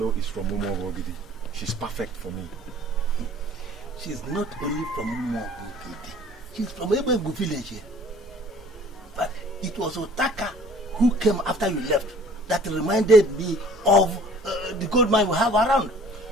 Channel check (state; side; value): normal; both; correlation 0.51